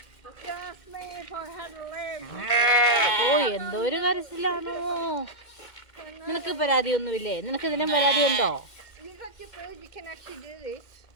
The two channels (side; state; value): right; late; 2.1 ms